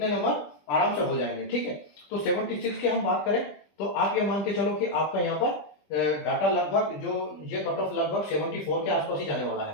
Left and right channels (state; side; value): late; right; 20 ms